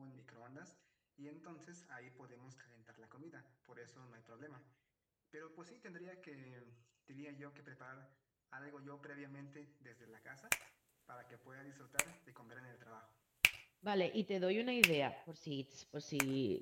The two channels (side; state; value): both; identical; correlation 1.00